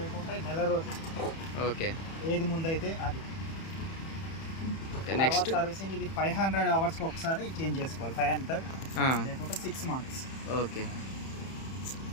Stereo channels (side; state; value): right; late; 31 ms